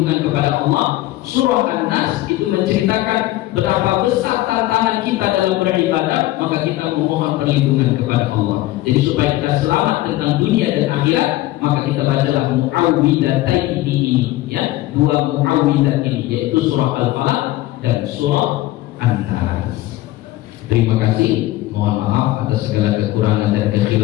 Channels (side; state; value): right; quieter; 16.6 dB